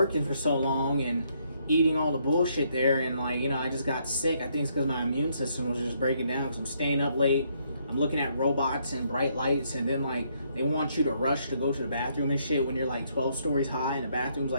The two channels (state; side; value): inverted; both; correlation -0.72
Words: for so long and eating all the bullshit there. And, like, you know, I just got sick. I think it's because my immune system was just breaking down because I'm staying up late. I'm looking at robots and bright lights. And then, like, they want you to rush to go to the bathroom and shit when you're like 12 stories high and the bathroom's